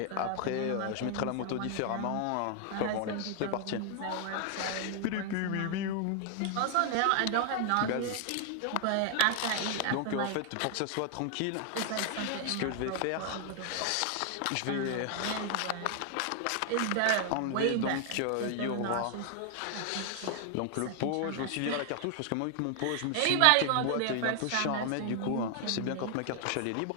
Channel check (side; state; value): both; different; correlation 0.00